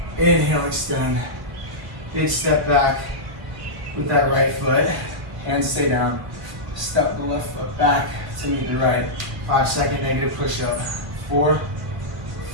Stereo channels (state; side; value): late; left; 2.2 ms